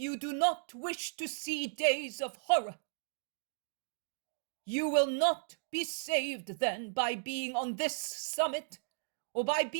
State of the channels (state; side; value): silent; left; digital silence